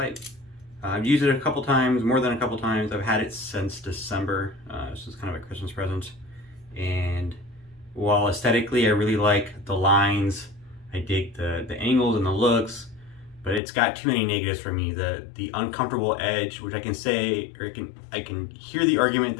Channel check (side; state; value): right; drops out; at 13.6 s